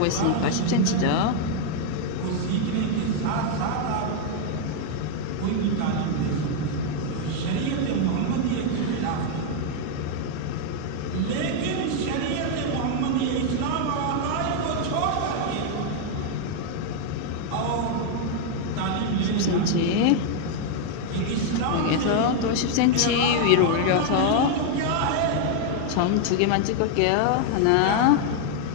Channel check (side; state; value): both; different; correlation 0.00